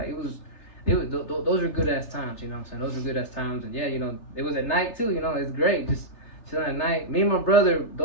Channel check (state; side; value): late; right; 3.3 ms